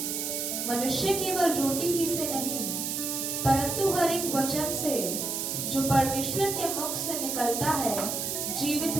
मनुष्य केवल रोटी ही से नहीं परंतु हर एक वचन से जो परमेश्वर के मुख से निकलता है जीवित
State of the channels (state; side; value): noise; right; hiss, 2 dB below the sound